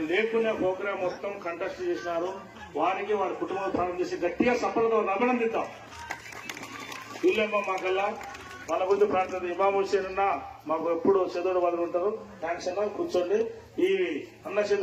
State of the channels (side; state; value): both; identical; correlation 1.00